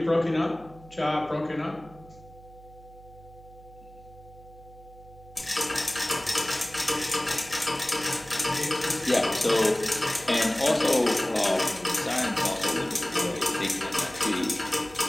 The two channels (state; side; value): noise; right; hum, 21 dB below the sound